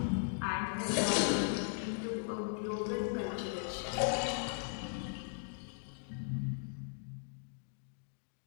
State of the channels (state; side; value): silent; right; digital silence